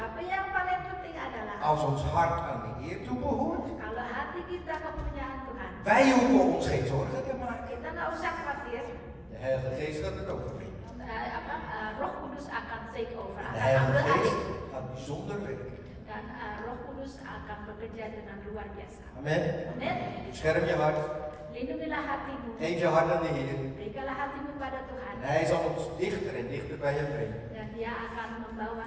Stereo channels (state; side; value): identical; both; correlation 1.00